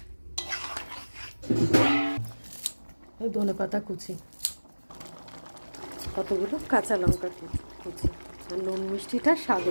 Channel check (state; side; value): inverted; both; correlation -1.00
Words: ধনেপাতা কুচি, কতগুলো কাঁচা লঙ্কা কুচি। আর নুন মিষ্টিটা স্বাদ